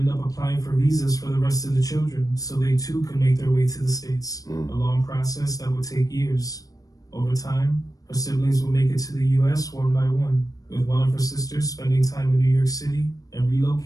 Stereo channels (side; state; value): right; late; 0.17 ms